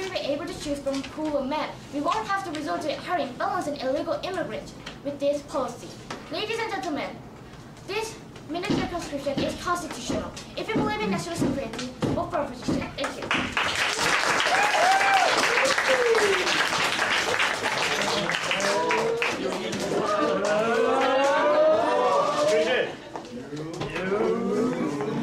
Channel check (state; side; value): identical; both; correlation 1.00